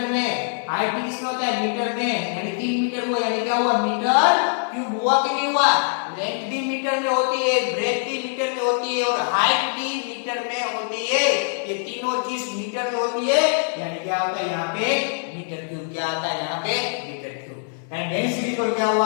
में। हाइट भी किसमें होता है, मीटर में, यानी 3 मीटर हुआ, यानी क्या हुआ, मीटर क्यूब हुआ कि नहीं हुआ। लेंथ भी मीटर में होती है, ब्रेथ भी मीटर में होती है और हाइट भी मीटर में होती है। ये तीनों चीज मीटर में होती है, यानी क्या होता है यहाँ पे मीटर क्यूब। क्या आता है यहाँ पे, मीटर क्यूब। एंड डेंसिटी को क्या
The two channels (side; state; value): right; silent; 56 dB below the other